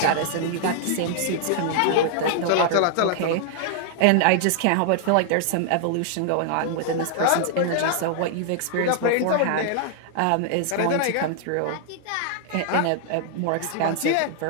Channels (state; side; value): different; both; correlation -0.01